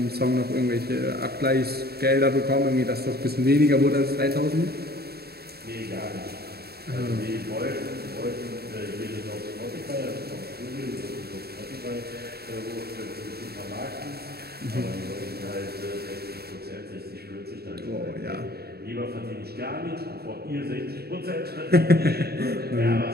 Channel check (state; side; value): late; left; 0.46 ms